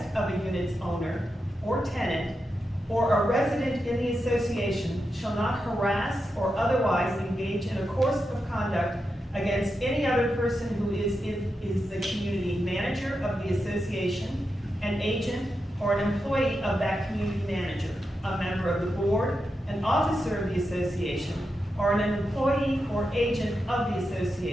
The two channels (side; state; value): both; normal; correlation 0.88